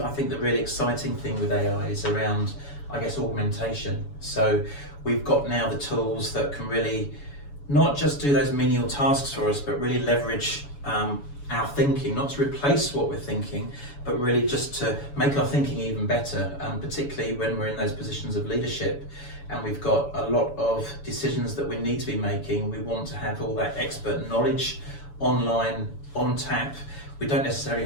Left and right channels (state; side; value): late; right; 7.0 ms